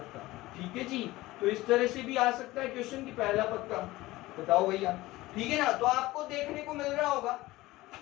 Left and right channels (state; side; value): quieter; right; 18.6 dB